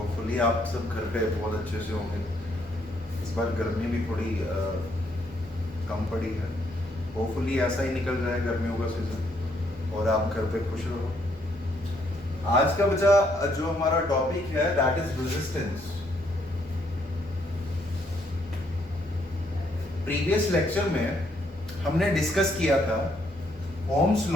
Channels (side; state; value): both; normal; correlation 0.71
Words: आप सब घर पे बहुत अच्छे से होंगे। इस बार गर्मी भी थोड़ी कम पड़ी है। होपफुली ऐसा ही निकल जाए गर्मियों का सीज़न और आप घर पे खुश रहो। आज का बचा जो हमारा टॉपिक है that is resistance. Previous lecture में हमने डिस्कस किया था ओम्स